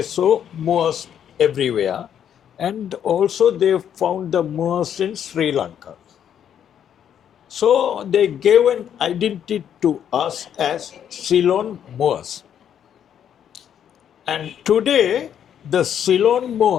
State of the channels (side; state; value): right; quieter; 9.2 dB